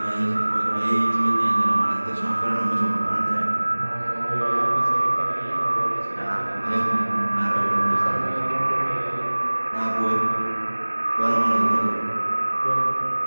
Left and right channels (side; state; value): both; inverted; correlation -1.00